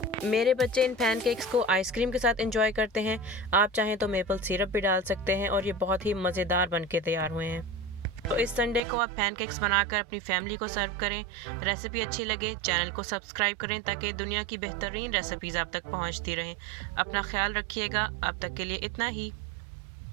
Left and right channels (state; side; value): drops out; left; at 8.8 s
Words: मेरे बच्चे इन पैनकेक्स को आइसक्रीम के साथ एंजॉय करते हैं। आप चाहें तो मेपल सिरप भी डाल सकते हैं और ये बहुत ही मज़ेदार बन के तैयार हुए हैं। तो इस संडे को आप पैनकेक्स बनाकर अपनी फैमिली को सर्व करें। रेसिपी अच्छी लगे चैनल को सब्सक्राइब करें, ताकि दुनिया की बेहतरीन रेसिपीज़ आप तक पहुंचती रहें। अपना ख्याल रखिएगा। अब तक के लिए इतना ही।